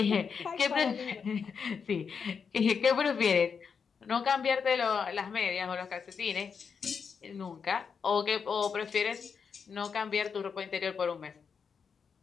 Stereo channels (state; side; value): quieter; right; 6.2 dB